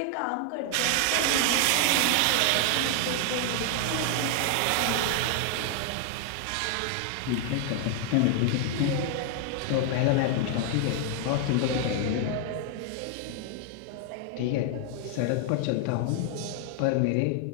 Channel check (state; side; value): different; both; correlation 0.00